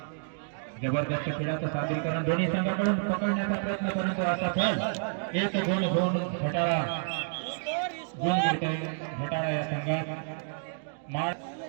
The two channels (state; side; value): silent; left; digital silence